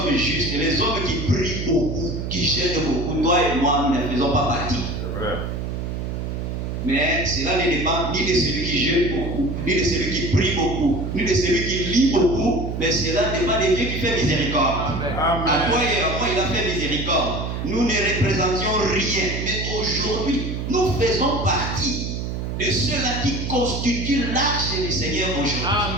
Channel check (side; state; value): right; noise; hum, 4 dB below the sound